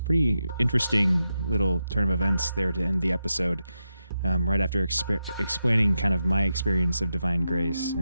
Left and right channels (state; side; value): inverted; both; correlation -0.88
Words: pretty interesting little turn of events there to end the episode. Right after explaining kind of my experience of divine grace